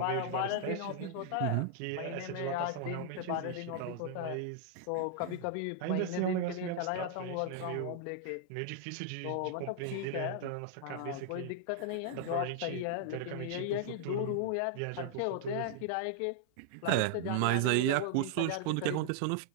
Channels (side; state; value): both; different; correlation -0.01